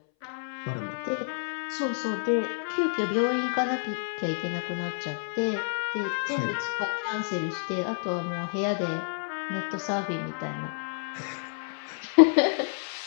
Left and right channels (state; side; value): silent; right; 59 dB below the other